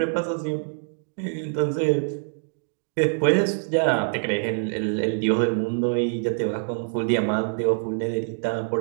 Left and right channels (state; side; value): silent; left; digital silence